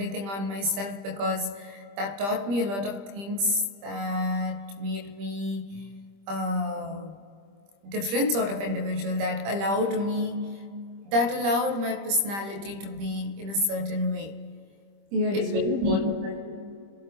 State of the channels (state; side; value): late; left; 25 ms